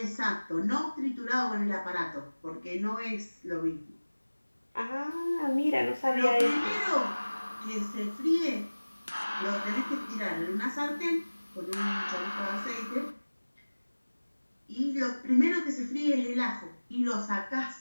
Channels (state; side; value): inverted; both; correlation -1.00